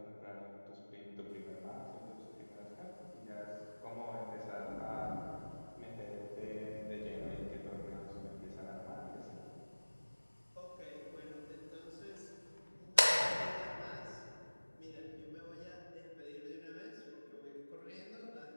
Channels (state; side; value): inverted; both; correlation -1.00